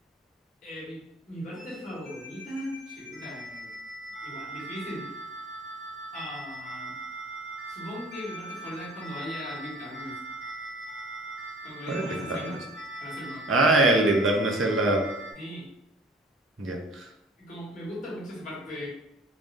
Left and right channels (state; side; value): normal; both; correlation 0.48